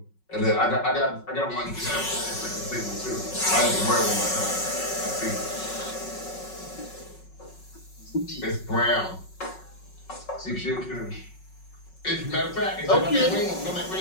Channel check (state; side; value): late; right; 5.4 ms